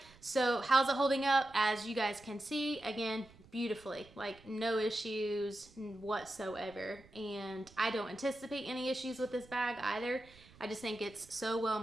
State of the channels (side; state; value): right; noise; rumble, 24 dB below the sound